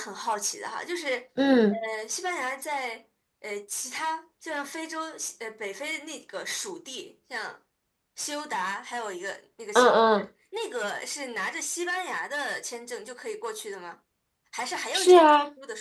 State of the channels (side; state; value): both; identical; correlation 1.00